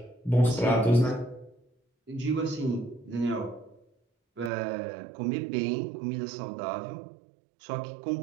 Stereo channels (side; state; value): left; drops out; at 4.5 s